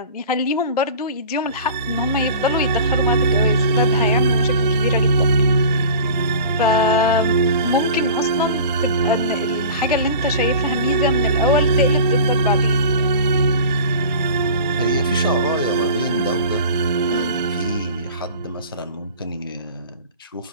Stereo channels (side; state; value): both; inverted; correlation -0.39